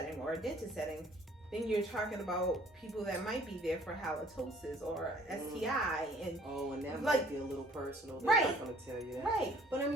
or a dentist setting, then you're talking about people that might be there for halitosis or STI and and that like, might be a little personal. They're right. not going to tell you that. Right. But I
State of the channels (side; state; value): both; normal; correlation 0.56